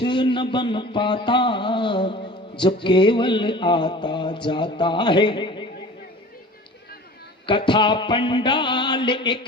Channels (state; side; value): normal; both; correlation 0.41